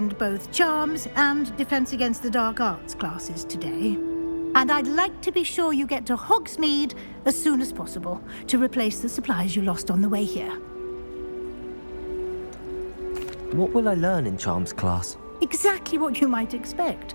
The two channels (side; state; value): both; inverted; correlation -1.00